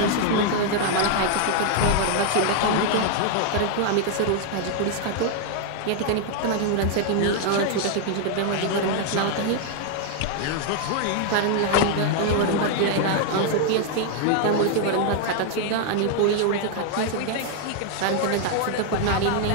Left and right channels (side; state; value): both; different; correlation 0.00